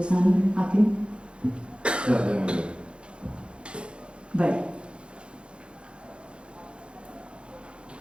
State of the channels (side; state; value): left; late; 0.056 ms